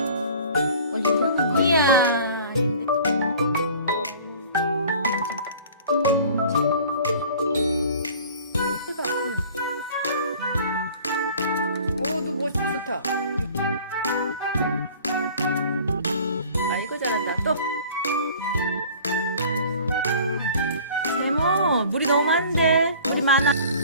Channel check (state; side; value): inverted; both; correlation -0.46